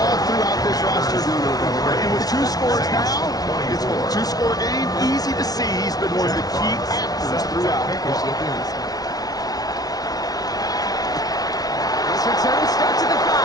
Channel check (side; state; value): right; late; 0.18 ms